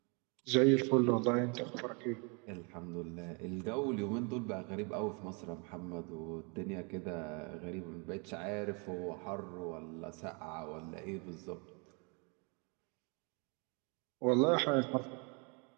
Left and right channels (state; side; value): quieter; left; 33.9 dB